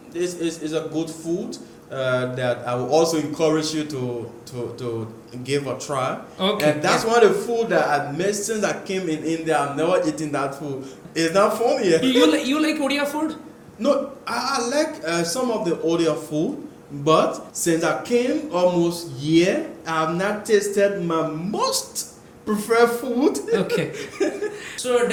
this is a good food that I will also encourage you to give a try. Okay. And that's one of the food that I missed since I came in India. I've never eaten that food. It's not funny. You like Odia food? No, I like some of the Odia food, but since I came almost year, I have not tasted my most preferred food. Okay. So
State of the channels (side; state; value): both; identical; correlation 1.00